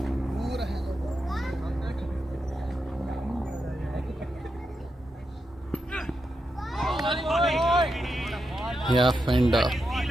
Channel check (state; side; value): normal; both; correlation 0.86